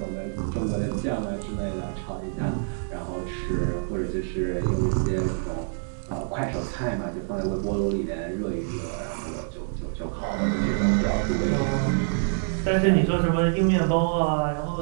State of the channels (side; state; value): left; silent; digital silence